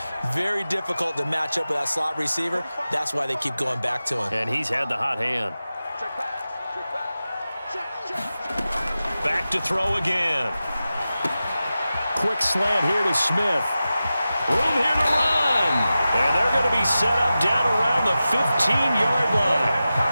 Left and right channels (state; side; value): inverted; both; correlation -0.94